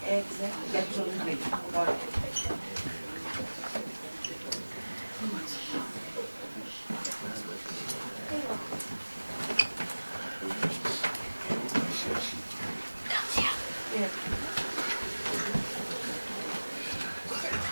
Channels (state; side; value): inverted; both; correlation -1.00